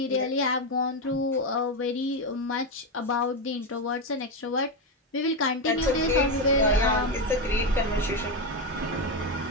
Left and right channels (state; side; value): normal; both; correlation 0.09